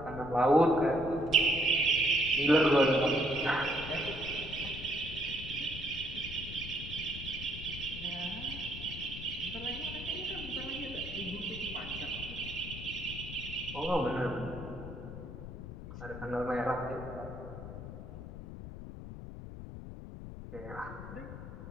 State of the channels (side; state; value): left; noise; rumble, 10 dB below the sound